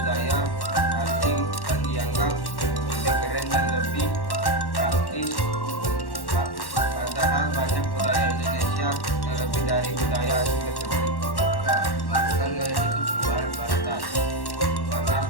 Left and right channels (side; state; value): right; late; 1.1 ms